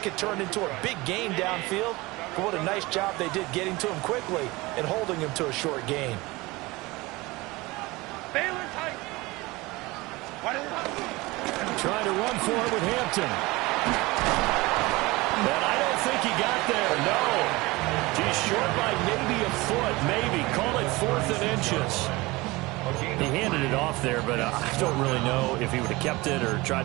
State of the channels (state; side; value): quieter; left; 22.0 dB